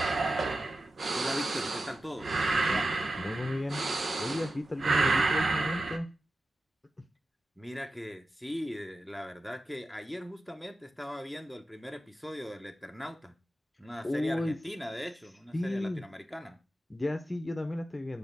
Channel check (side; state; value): both; normal; correlation 0.92